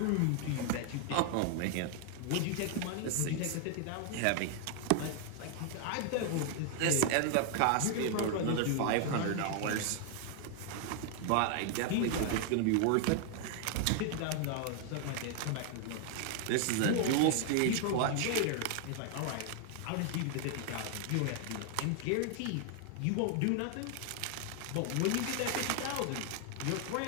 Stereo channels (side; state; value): both; different; correlation 0.00